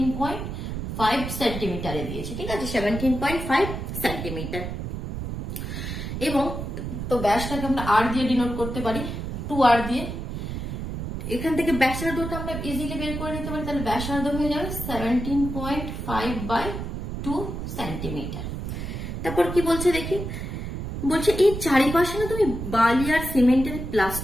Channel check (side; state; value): right; noise; rumble, 5 dB below the sound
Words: সেন্টিমিটারে দিয়েছে, ঠিক আছে? 17.5 সেন্টিমিটার। এবং তো ব্যাসটাকে আমরা আর দিয়ে ডিনোট করতে পারি, 2r দিয়ে। এখান থেকে ব্যাসার্ধটা আমরা ইজিলি বের করে নিতে পারি, তাহলে ব্যাসার্ধ হয়ে যাবে 17.5/2 সেন্টিমিটার। তারপর কি বলছে দেখি, বলছে এই চারিপাশে না তুমি বালি আর সিমেন্টের